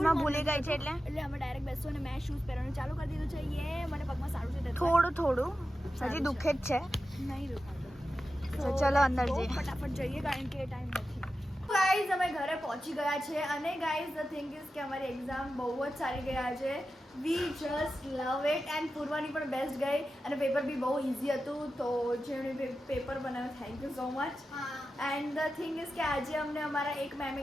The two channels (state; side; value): normal; both; correlation 0.92